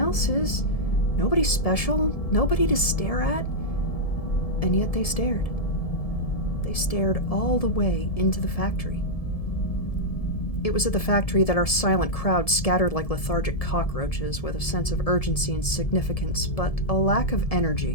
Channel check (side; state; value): right; late; 1.7 ms